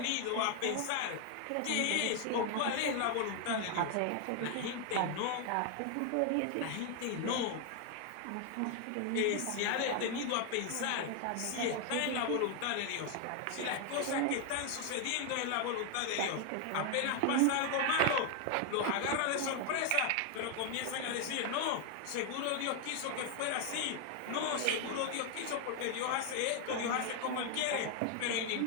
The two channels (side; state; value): both; different; correlation 0.01